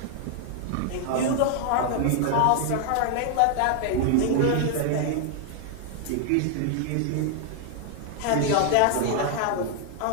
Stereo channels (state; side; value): different; both; correlation 0.00